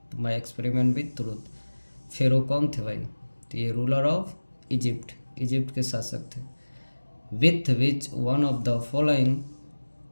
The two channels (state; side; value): inverted; both; correlation -1.00